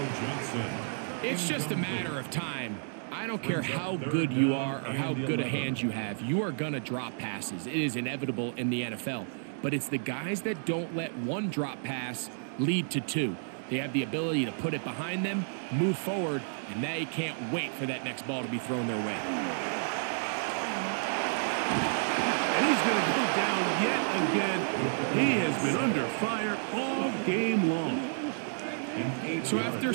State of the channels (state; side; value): silent; left; digital silence